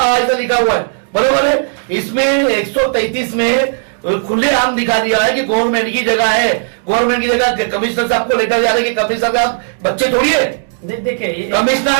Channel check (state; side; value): silent; left; digital silence